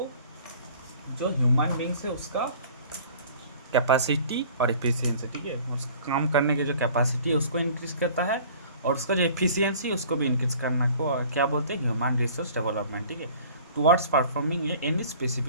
जो ह्यूमन बींग्स है उसका कैपेसिटी और एफिशिएंसी, ठीक है, उसका काम करने की जो कैपेसिटी है उसको इंक्रीज करता है, और उसका जो एफिशिएंसी उसको भी इंक्रीज करना को क्या बोलते हैं? Human resource development. ठीक है, towards performing any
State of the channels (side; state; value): both; inverted; correlation -0.49